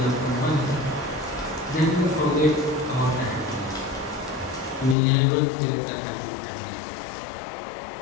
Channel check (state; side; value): drops out; right; at 5.0 s